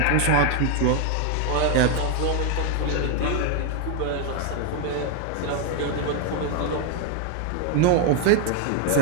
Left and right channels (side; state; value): both; different; correlation 0.01